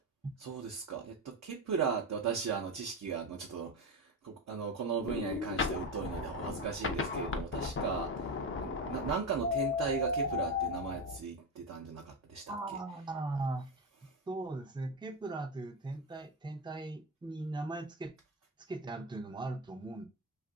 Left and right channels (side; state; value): both; normal; correlation 0.14